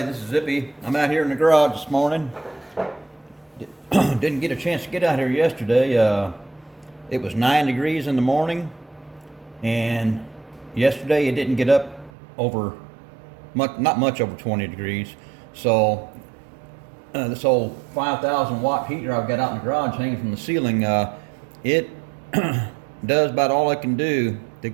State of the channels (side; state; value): left; drops out; at 12.1 s